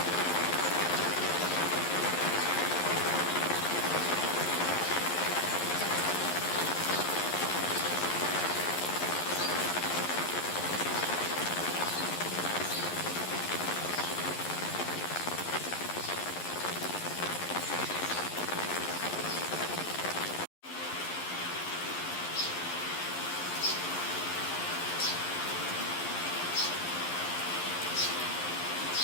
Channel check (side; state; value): right; late; 11 ms